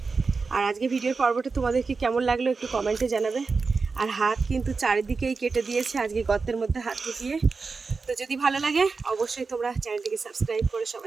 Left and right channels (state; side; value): quieter; left; 4.5 dB